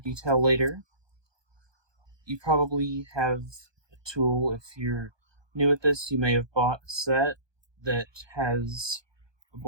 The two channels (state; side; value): late; left; 1.2 ms